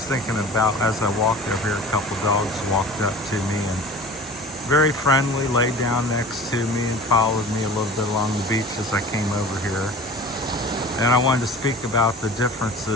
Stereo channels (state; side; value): normal; both; correlation 0.39